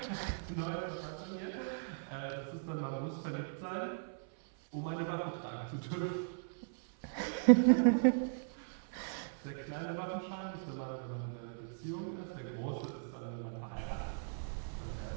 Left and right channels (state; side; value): silent; left; 52 dB below the other